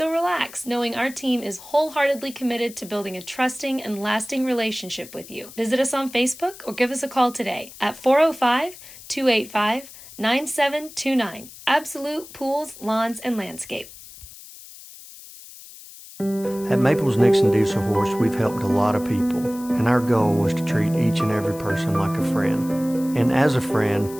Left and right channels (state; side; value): noise; left; hiss, 17 dB below the sound